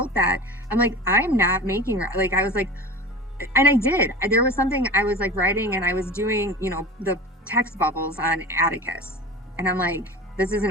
that, I'm like, I'm not making, like, I was like, and I did, there was something I was like writing, and I was doing, the text bubbles on Atticus, and I'm like, this is an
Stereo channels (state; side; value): normal; both; correlation 0.34